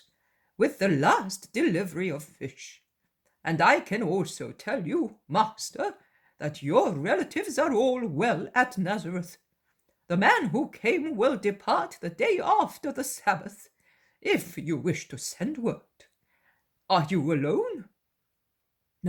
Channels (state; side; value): identical; both; correlation 1.00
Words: with the last delivery of fish. And I can also tell you, Master, that your relatives are all well at Nazareth. The man who came will depart the day after the Sabbath, if you wish to send word. Are you alone?"